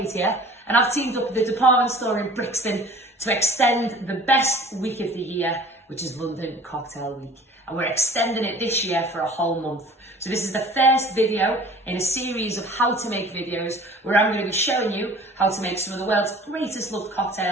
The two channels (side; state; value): both; normal; correlation 0.46